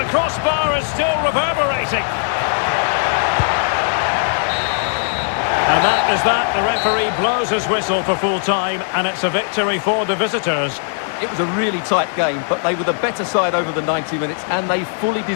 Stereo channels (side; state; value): right; silent; digital silence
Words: crossbar is still reverberating. And that is that. The referee blows his whistle for full time, and it's a victory for the visitors. It was a really tight game, but they were the better side over the 90 minutes, and they fully